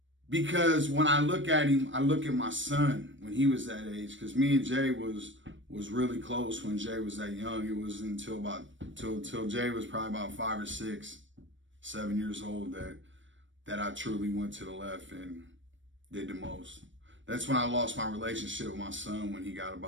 Because when I look at him, I look at my son when he was that age. Because me and Jay was really close when Jay was that young. It was until Jay was probably about 5 or 6, 7 years old that I truly went to the left and did the most. That's when I lost my relationship with my son when he got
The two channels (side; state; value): left; late; 0.55 ms